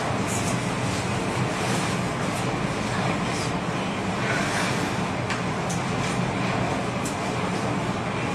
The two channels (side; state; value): both; identical; correlation 1.00